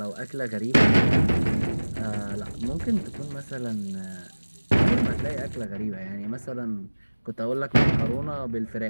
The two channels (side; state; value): both; inverted; correlation -1.00